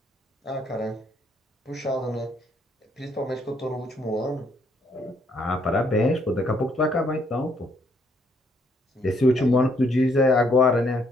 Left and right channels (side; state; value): both; normal; correlation 0.69